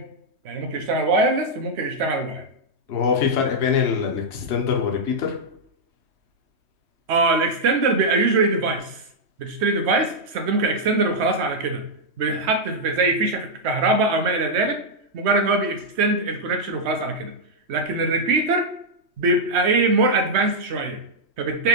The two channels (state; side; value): late; left; 3.1 ms